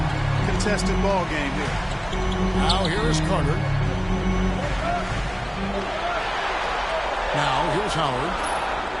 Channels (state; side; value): identical; both; correlation 1.00